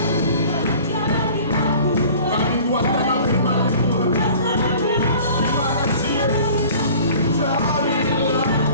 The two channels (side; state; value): both; inverted; correlation -0.46